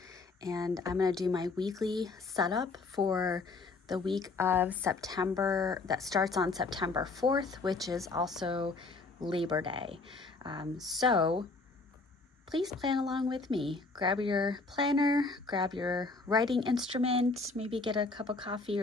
and I'm going to do my weekly setup for the week of September that starts on September 4th, which is also Labor Day. So please plan along with me. Grab your planner, grab your writing instrument, maybe get a cup of coffee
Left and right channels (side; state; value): right; quieter; 3.8 dB